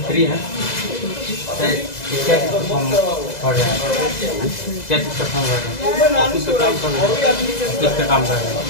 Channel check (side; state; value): right; late; 2.0 ms